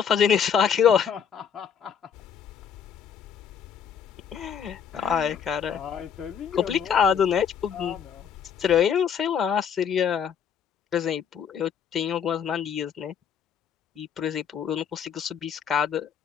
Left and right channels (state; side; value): quieter; right; 7.7 dB